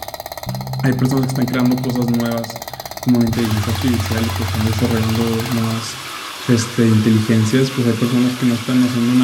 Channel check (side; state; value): both; identical; correlation 1.00